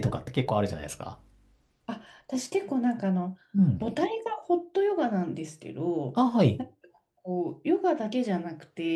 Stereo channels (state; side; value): identical; both; correlation 1.00